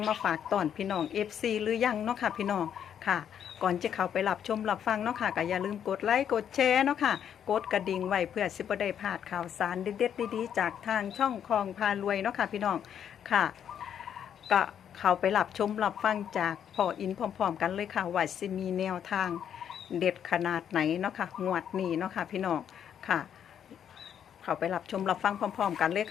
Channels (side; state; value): right; quieter; 9.0 dB